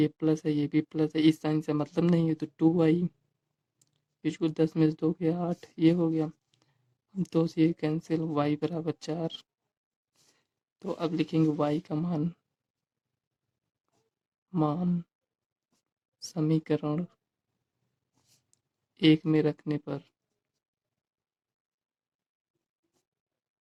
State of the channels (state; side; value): identical; both; correlation 1.00